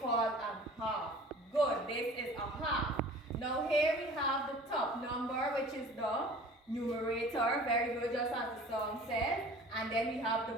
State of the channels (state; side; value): normal; both; correlation 0.44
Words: called a half. Good, this is a half. Now here we have the top number, which is the numerator. Very good, just as the song says. And then we have